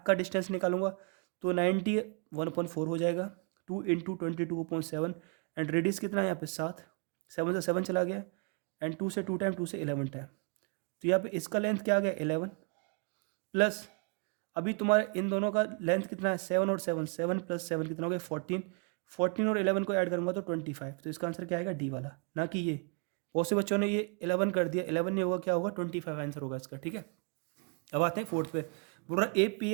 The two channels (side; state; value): left; quieter; 37.3 dB